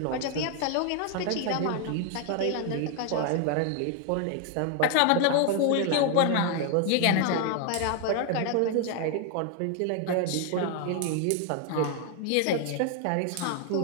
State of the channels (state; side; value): different; both; correlation 0.00